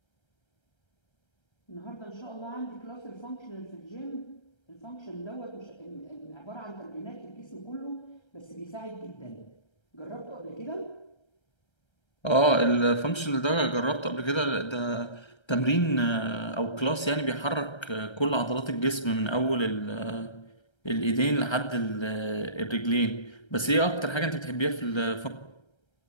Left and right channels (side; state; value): right; late; 1.3 ms